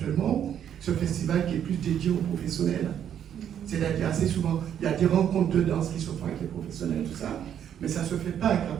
ce festival qui est plus dédié aux professionnels. C'est-à-dire assez souvent, il y a des rencontres de danse qui se font avec les professionnels, tout ça, mais ça ne se fait pas avec la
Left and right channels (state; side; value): quieter; left; 9.4 dB